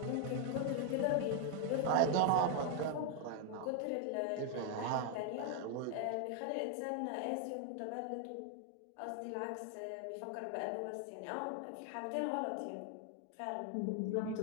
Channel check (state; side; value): different; both; correlation 0.01